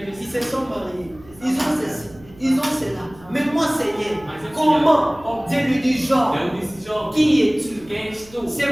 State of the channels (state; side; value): noise; right; hum, 23 dB below the sound